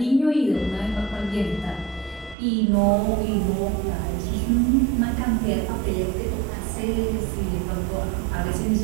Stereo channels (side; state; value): left; drops out; at 2.4 s